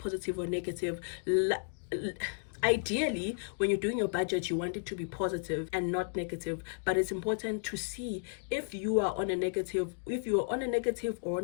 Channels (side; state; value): right; silent; digital silence